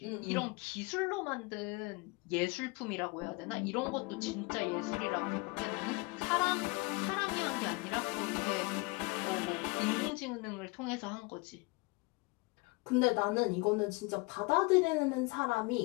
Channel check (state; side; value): quieter; right; 27.0 dB